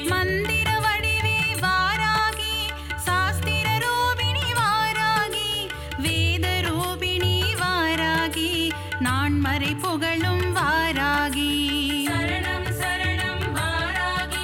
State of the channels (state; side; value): identical; both; correlation 1.00